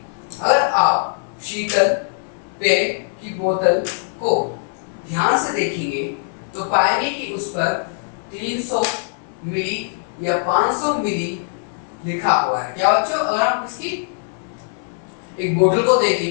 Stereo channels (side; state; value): right; silent; digital silence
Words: अगर आप शीतल पेय की बोतल को ध्यान से देखेंगे तो पाएंगे कि उस पर 300 मिली या 500 मिली लिखा हुआ है। क्या बच्चों, अगर हम इसकी एक बोतल को